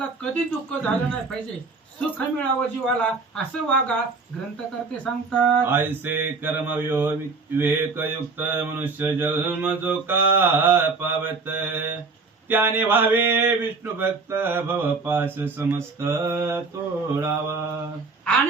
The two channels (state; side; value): quieter; left; 4.3 dB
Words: कधी दुःख झालं नाही पाहिजे. सुख मिळावं जीवाला असं वागा ग्रंथकर्ते सांगतात. ऐसे कर्म विवेकयुक्त मनुष्य जन्म जो का पावत त्याने व्हावे विष्णू भक्त भवपास समस्त तोडावा.